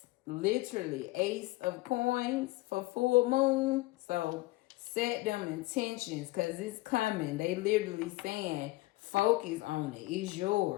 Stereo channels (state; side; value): quieter; right; 20.7 dB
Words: Literally, Ace of Coins for full moon. So set them intentions because it's coming. They literally saying focus on it. It's